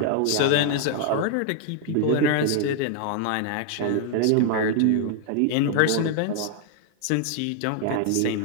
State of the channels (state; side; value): different; both; correlation 0.00